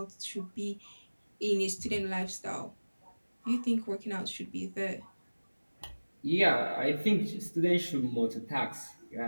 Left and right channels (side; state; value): both; inverted; correlation -1.00